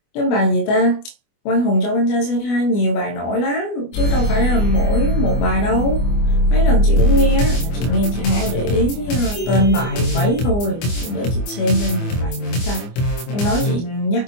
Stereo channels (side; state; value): right; late; 24 ms